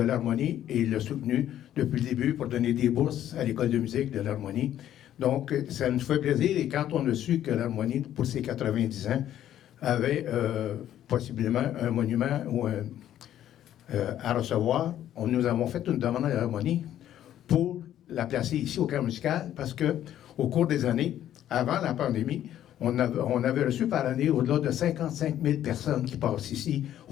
l'harmonie et il l'a soutenu depuis le début pour donner des bourses à l'école de musique de l'harmonie. Donc, ça nous fait plaisir. Et quand on a su que l'harmonie, pour ses 90 ans, avait possiblement un monument ou à recevoir, nous avons fait une demande à l'harmonie pour la placer ici au camp musical parce que au cours des années, avant la pandémie, on avait reçu par année au-delà de 55 000 personnes qui passent ici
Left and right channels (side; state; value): right; quieter; 11.6 dB